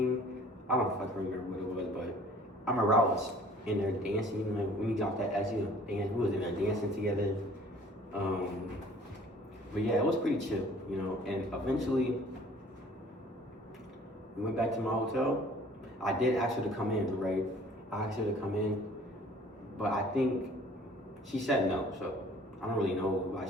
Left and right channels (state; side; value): normal; both; correlation 0.52